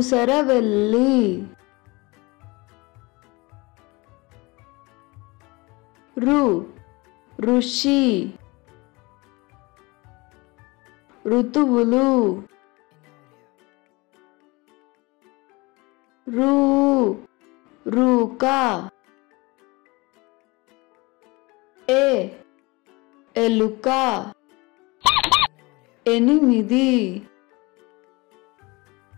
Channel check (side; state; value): right; quieter; 24.6 dB